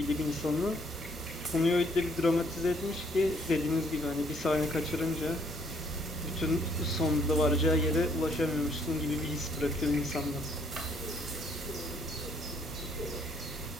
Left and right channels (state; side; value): normal; both; correlation 0.66